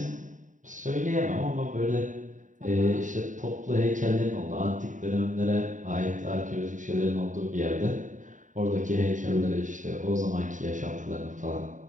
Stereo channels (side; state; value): left; late; 0.37 ms